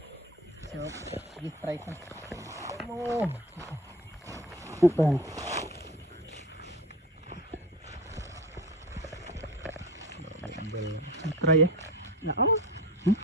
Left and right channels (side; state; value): both; normal; correlation 0.33